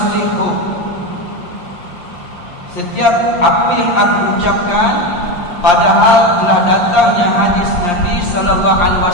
setiap apa yang aku ucapkan padahal telah datangnya hadis Nabi sallallahu alaihi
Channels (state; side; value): late; right; 5.7 ms